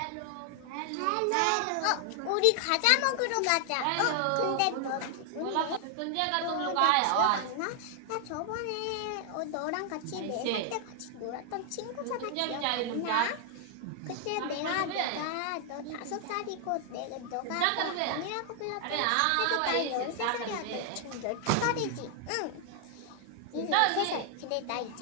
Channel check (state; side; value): different; both; correlation 0.00